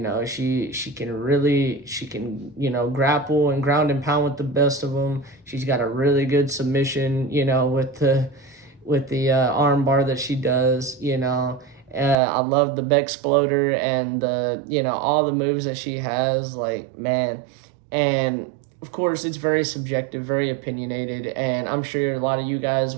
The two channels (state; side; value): drops out; left; at 12.2 s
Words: she can, you know, grapple and ground and pound with the best of them. She's got a really good submission, you know, with the arm bar that she does, you know. I love the Bexploder and the, you know, all the moves that she has, like, man. And of course, it's very subjective, very opinionated, and I'm sure a lot of you guys